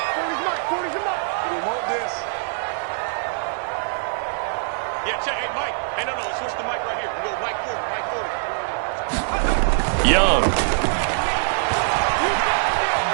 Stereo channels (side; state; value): left; silent; 63 dB below the other